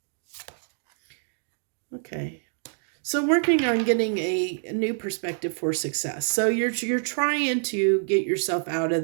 Okay. So working on getting a new perspective for success. So you're trying to get yourself out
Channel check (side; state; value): left; silent; digital silence